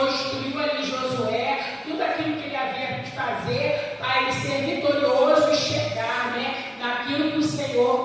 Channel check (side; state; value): both; identical; correlation 1.00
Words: instruiu ali Josué, tudo aquilo que ele havia de fazer para ele ser vitorioso e chegar, né, naquilo que o